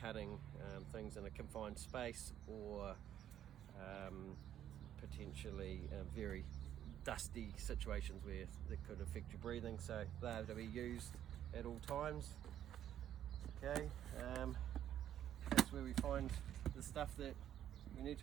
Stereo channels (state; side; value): quieter; left; 10.8 dB